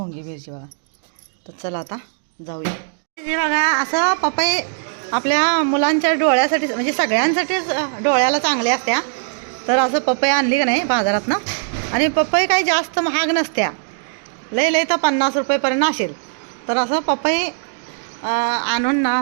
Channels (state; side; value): silent; left; digital silence